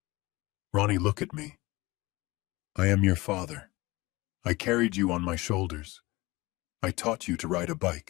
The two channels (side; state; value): right; quieter; 21.6 dB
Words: Ronnie, look at me. I am your father. I carried you on my shoulders. I taught you to ride a